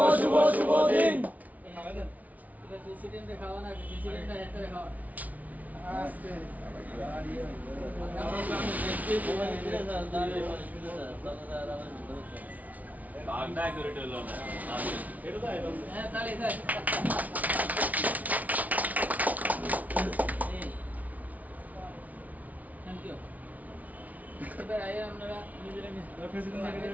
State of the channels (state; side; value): late; left; 0.072 ms